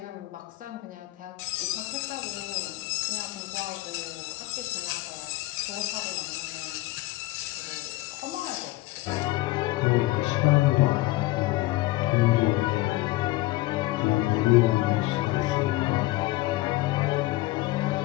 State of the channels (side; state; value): right; quieter; 18.9 dB